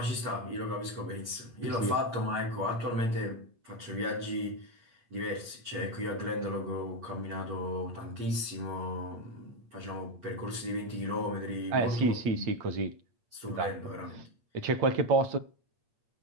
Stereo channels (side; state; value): left; late; 8.6 ms